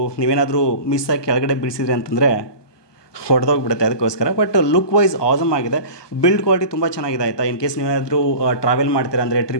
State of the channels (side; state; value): right; late; 1.2 ms